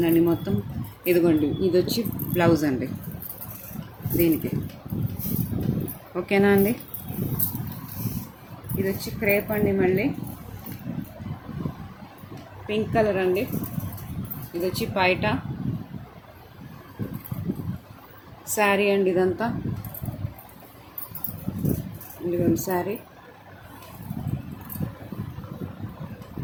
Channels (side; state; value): both; identical; correlation 1.00